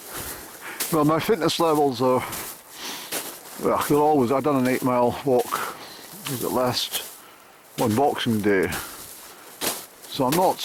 my fitness levels are, well, they're always, I've done an 8-mile walk, was it last, on Boxing Day. So I'm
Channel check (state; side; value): identical; both; correlation 1.00